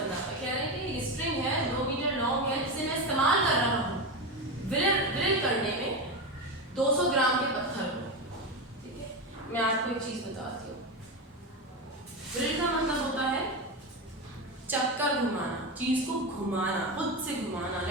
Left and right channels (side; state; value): both; normal; correlation 0.17